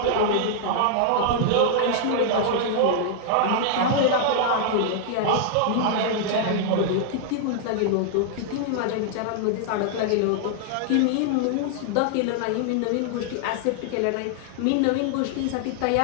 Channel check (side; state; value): both; different; correlation -0.01